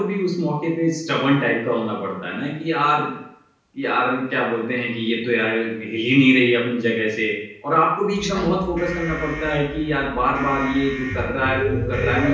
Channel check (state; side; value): identical; both; correlation 1.00